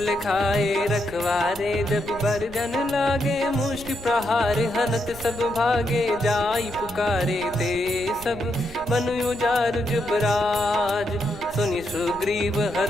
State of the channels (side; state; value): right; noise; rumble, 17 dB below the sound